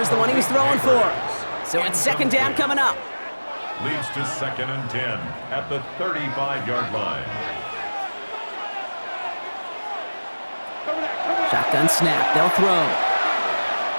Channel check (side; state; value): both; inverted; correlation -1.00